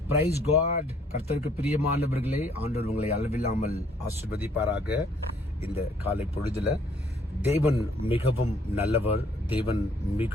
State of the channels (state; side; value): normal; both; correlation 0.63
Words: price God. கர்த்தருக்கு பிரியமானவர்களே, ஆண்டவர் உங்களை அளவில்லாமல் ஆசீர்வதிப்பாராக. இந்த காலை பொழுதுல தேவன் மிகவும் நல்லவர், தேவன்